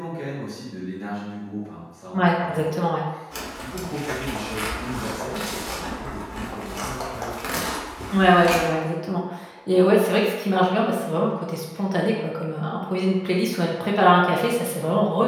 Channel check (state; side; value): identical; both; correlation 1.00